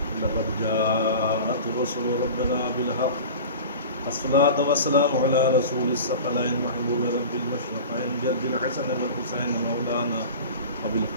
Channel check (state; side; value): inverted; both; correlation -0.35